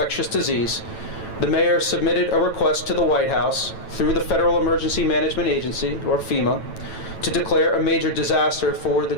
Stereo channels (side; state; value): right; late; 9.1 ms